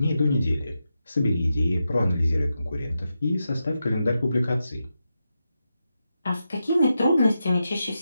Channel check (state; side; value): inverted; both; correlation -0.88